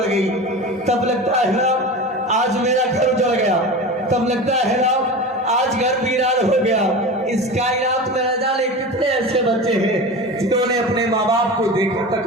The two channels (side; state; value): both; normal; correlation 0.30